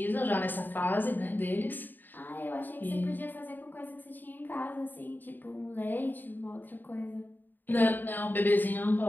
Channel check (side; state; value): right; late; 0.090 ms